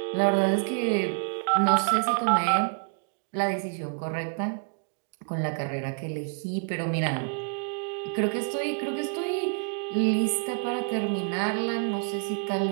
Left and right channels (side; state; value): left; silent; digital silence